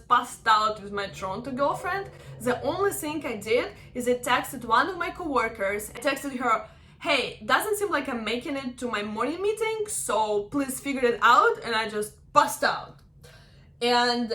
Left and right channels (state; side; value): identical; both; correlation 1.00